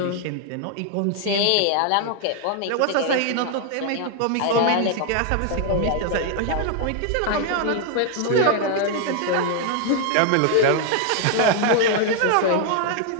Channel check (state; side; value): different; both; correlation 0.00